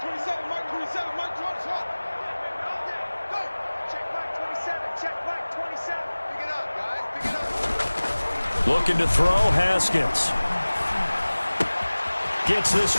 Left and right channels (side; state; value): both; inverted; correlation -1.00